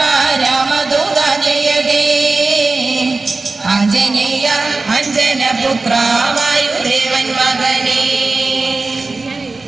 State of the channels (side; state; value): left; quieter; 3.6 dB